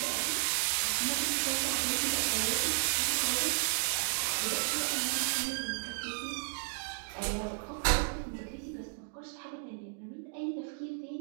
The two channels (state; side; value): silent; left; digital silence